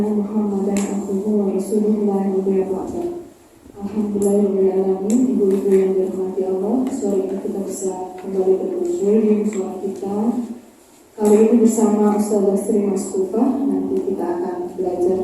محمدا عبده ورسوله لا نبي بعده. Alhamdulillahirrahmanirrahim. Ibu-ibu yang dirahmati Allah, sore ini kita bisa kembali berkumpul di musola kita. Kali ini bersama Ustazah Sri Maskufa. Nanti kita akan belajar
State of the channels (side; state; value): both; identical; correlation 1.00